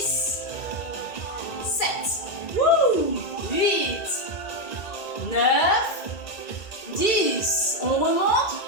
7, 8, 9, 10. On remonte,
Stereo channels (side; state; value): right; late; 2.3 ms